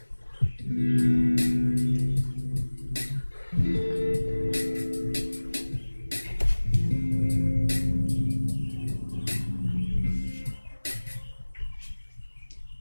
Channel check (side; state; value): both; inverted; correlation -1.00